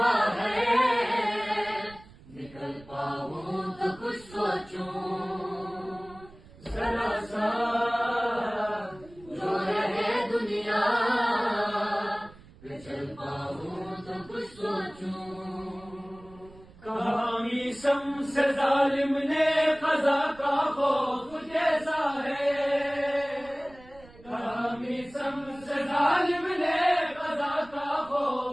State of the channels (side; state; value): right; noise; rumble, 22 dB below the sound